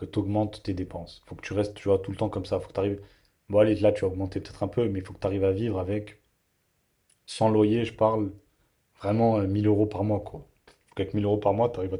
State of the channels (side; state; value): both; identical; correlation 1.00